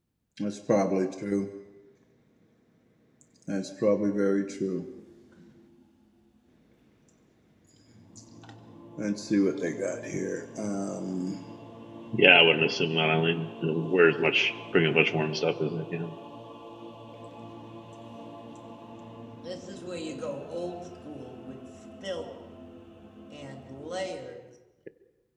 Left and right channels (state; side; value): identical; both; correlation 1.00